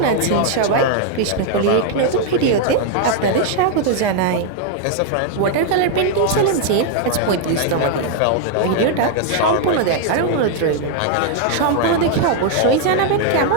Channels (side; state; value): both; different; correlation 0.00